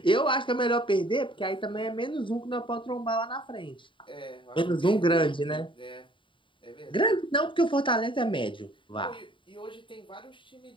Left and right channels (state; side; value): late; right; 0.24 ms